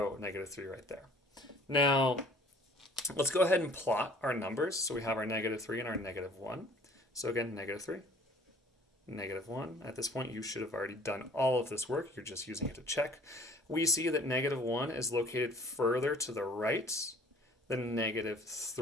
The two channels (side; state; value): both; normal; correlation 0.51